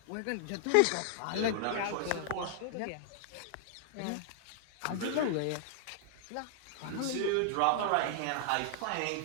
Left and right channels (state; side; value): different; both; correlation -0.01